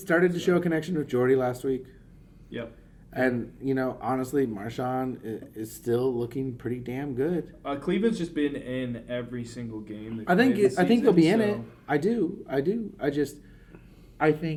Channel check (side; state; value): both; identical; correlation 1.00